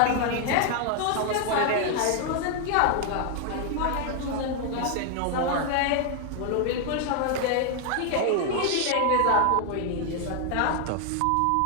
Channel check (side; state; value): both; different; correlation 0.00